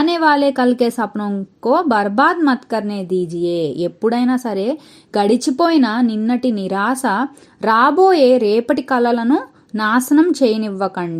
वाले कल के सपनों को बर्बाद मत करने दीजिए। ఎప్పుడైనా సరే గడిచిపోయిన నిన్నటి నిరాశ రాబోయే రేపటి కలలను నాశనం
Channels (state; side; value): identical; both; correlation 1.00